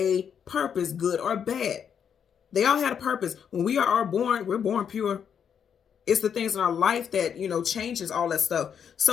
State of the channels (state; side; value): quieter; right; 7.8 dB